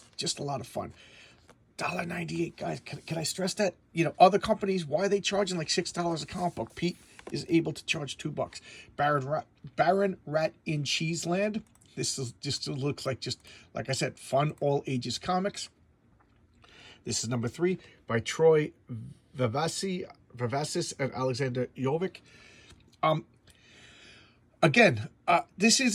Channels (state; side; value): identical; both; correlation 1.00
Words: a lot of fun. $1.98, guys. Can I stress that? Other companies, why are they charging like $6 a comic book? Pete is able to charge $2. Baron Rat in Cheeseland. This is just looks like like I said, fun all ages comics. This is number 3 by Troy Vivacis and Alexander Jovic. Again, this